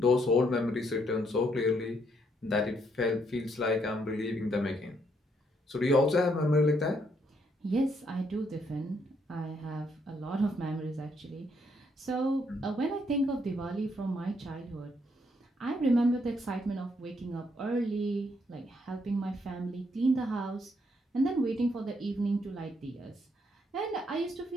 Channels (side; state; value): both; normal; correlation 0.73